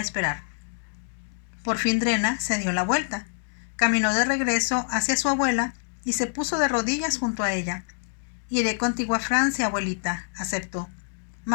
Por fin Drena se dio la vuelta. Caminó de regreso hacia su abuela y se puso de rodillas junto a ella. «Iré contigo a Francia, abuelita», aceptó.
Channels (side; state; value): right; silent; digital silence